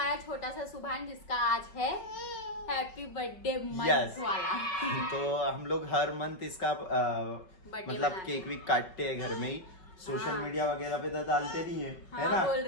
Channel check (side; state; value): right; late; 5.3 ms